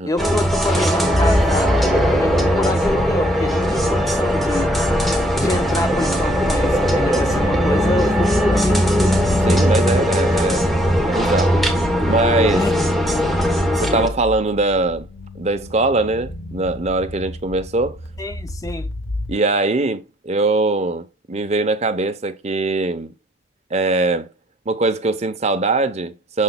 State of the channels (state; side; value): normal; both; correlation 0.64